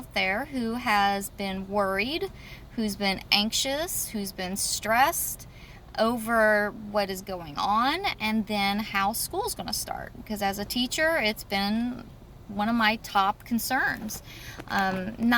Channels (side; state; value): both; identical; correlation 1.00